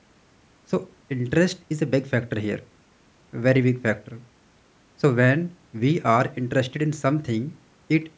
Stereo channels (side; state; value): both; identical; correlation 1.00